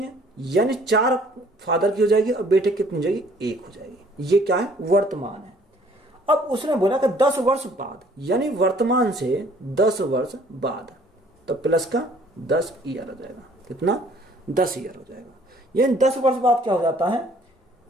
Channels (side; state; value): both; normal; correlation 0.58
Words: है, यानी 4 फादर की हो जाएगी और बेटे कितनी हो जाएगी, 1 हो जाएगी। ये क्या है, वर्तमान है। अब उसने बोला कि 10 वर्ष बाद, यानी वर्तमान से 10 वर्ष बाद, तो प्लस का 10 ईयर हो जाएगा। कितना, 10 ईयर हो जाएगा। यानी 10 वर्ष बाद क्या हो जाता है,